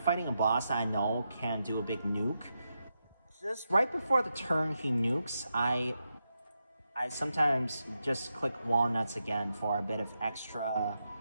a boss I know can do a big nuke, just right before the turn he nukes, I sometimes just click walnuts again for a bit of extra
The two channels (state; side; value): inverted; both; correlation -0.87